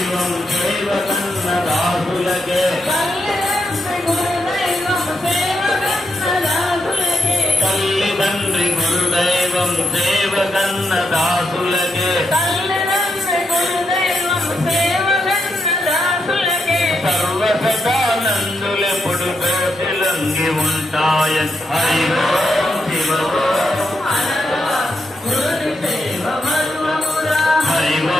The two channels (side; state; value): both; normal; correlation 0.82